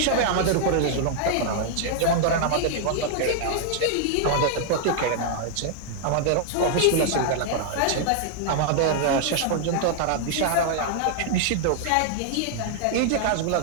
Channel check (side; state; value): both; different; correlation -0.01